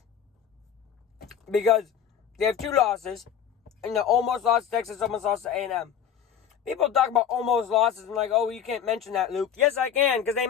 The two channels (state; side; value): quieter; right; 8.5 dB